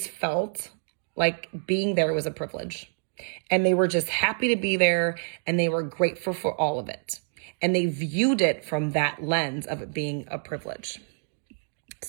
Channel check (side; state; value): left; silent; digital silence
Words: felt like being there was a privilege. And they were just happy to be there and they were grateful for all of it. And they viewed it from that lens of it being a privilege.